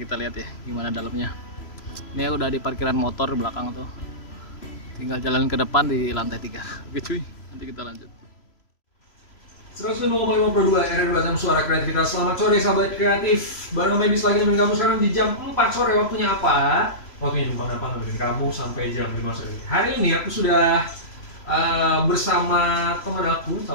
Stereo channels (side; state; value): right; late; 3.0 ms